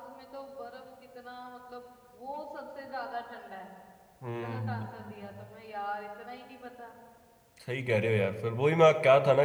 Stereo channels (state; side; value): identical; both; correlation 1.00